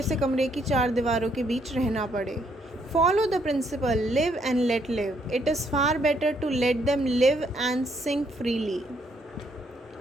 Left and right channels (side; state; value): both; normal; correlation 0.71